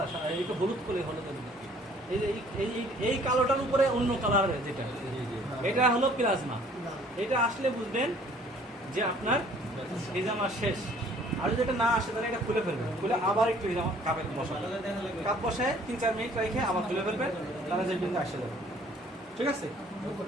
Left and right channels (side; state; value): both; normal; correlation 0.57